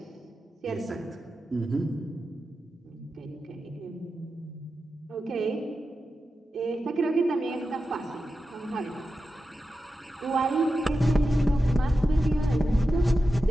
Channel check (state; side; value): normal; both; correlation 0.91